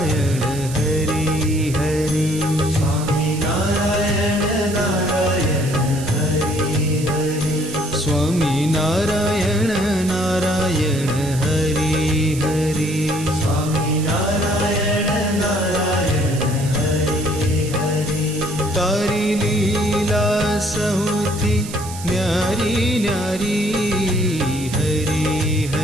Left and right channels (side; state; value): right; noise; hiss, 13 dB below the sound